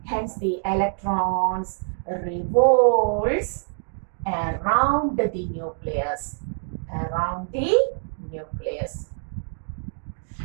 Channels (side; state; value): left; silent; digital silence